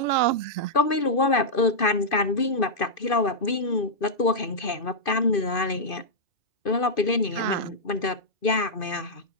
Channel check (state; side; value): late; right; 2.5 ms